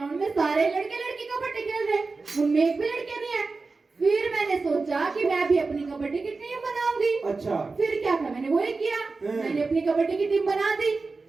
में सारे लड़के लड़की कबड्डी खेल रहे, उनमें एक भी लड़कियां नहीं है। फिर मैंने सोचा कि मैं भी अपनी कबड्डी की टीम बनाऊंगी। अच्छा। फिर क्या था, मैंने वही किया, मैंने अपनी कबड्डी की टीम बना दी।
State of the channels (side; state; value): left; quieter; 4.0 dB